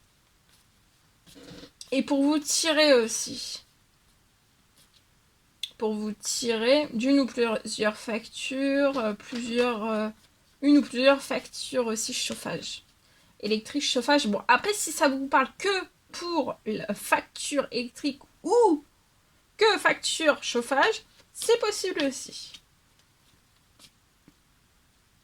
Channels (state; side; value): identical; both; correlation 1.00